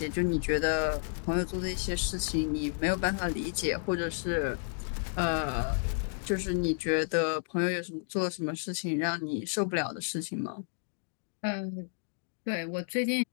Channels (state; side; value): silent; right; digital silence